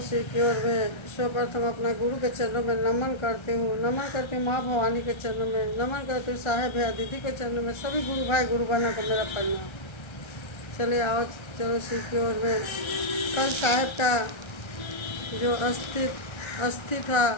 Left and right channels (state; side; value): late; right; 1.3 ms